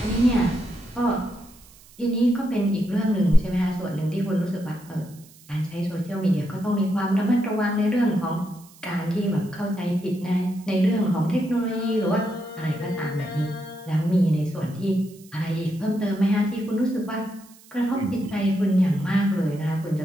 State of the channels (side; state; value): right; noise; hiss, 25 dB below the sound